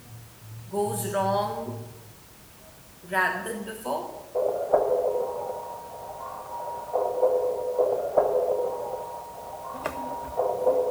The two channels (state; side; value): identical; both; correlation 1.00